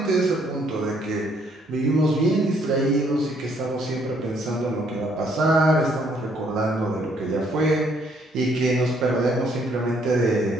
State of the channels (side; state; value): both; normal; correlation 0.67